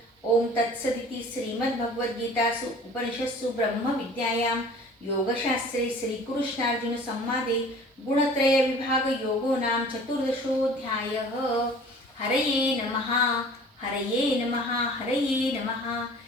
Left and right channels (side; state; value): both; normal; correlation 0.47